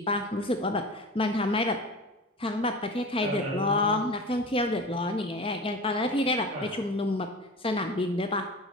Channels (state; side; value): normal; both; correlation 0.34